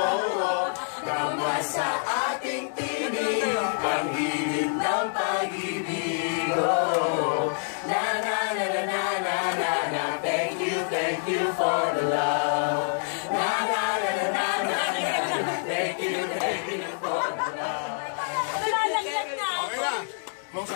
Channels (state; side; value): silent; right; digital silence